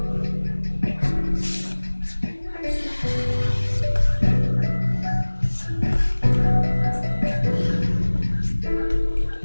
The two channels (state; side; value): inverted; both; correlation -1.00